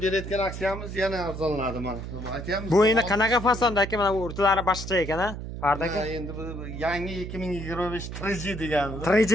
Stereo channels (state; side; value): noise; right; hum, 8 dB below the sound